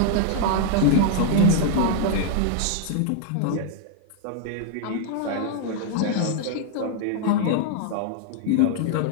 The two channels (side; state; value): both; different; correlation -0.01